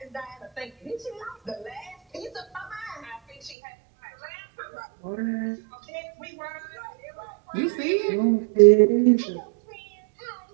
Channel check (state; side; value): drops out; left; at 3.6 s